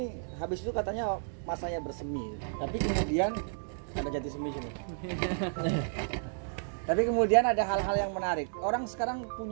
habis itu katanya masanya bersemi, tapi kemudian ada jati semi sini. Tapi kemudian ada hal-hal yang menarik. Orang sekarang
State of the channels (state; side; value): silent; left; digital silence